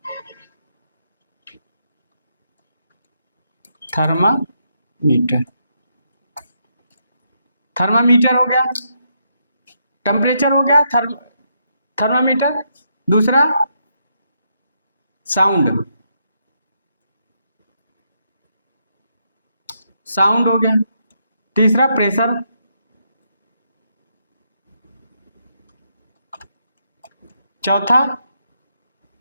थर्मामीटर, थर्मामीटर हो गया, टेम्परेचर हो गया, थर्मामीटर। दूसरा साउंड, साउंड हो गया। तीसरा प्रेशर, चौथा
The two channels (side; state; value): both; inverted; correlation -0.78